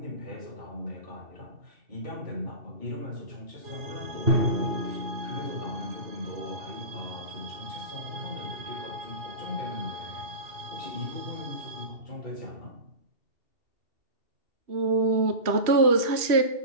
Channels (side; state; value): left; late; 3.1 ms